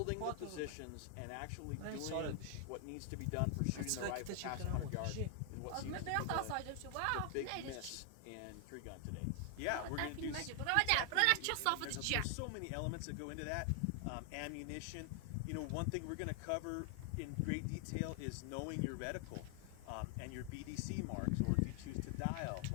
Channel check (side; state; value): both; different; correlation 0.00